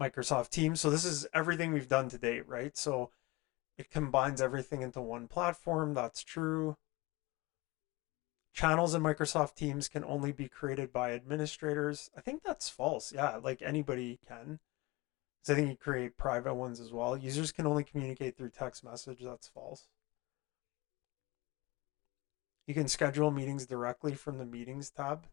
Microsoft Teams. So this is everything we've done to date, right? So it combines everything into one platform. That's true. Channels in Microsoft Teams can only be created by administrators. I think that's false. Yeah, like anybody can. So I think you create private ones as well. Users can only communicate through text message. That's false. You can schedule meetings directly from the meetings tab.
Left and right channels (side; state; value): right; quieter; 21.7 dB